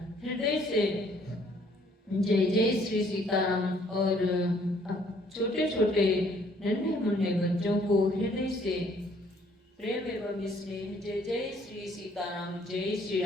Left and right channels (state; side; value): normal; both; correlation 0.63